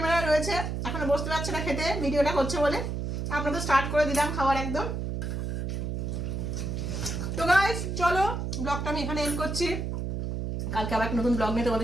রয়েছে, এখনো বসতে পারছে না খেতে, ভিডিওটা করছে বলে। আমরা তো স্টার্ট করে দিলাম খাওয়ার একদম। তো গাইস চলো ব্লগটা আমি এখানে এন্ড করছি। কালকে আবার একটা নতুন ব্লগ নিয়ে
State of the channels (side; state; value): right; noise; hum, 3 dB below the sound